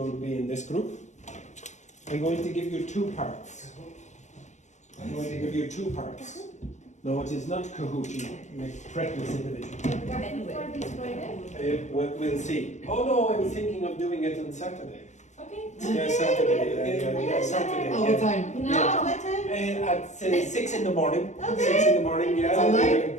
be in this group. I'm going to give you 2 parts. I'm going to give you 2 parts. No, it is not Kahoot, you make practice individual. For this Friday? We'll see. Oh no, I'm thinking of doing it on Saturday. Okay. Yeah, Saturday. Yeah, Saturday. All the time. No, Yeah. what time? At 6 in the morning. Okay. 6 in the morning, yeah.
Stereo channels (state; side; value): late; right; 0.34 ms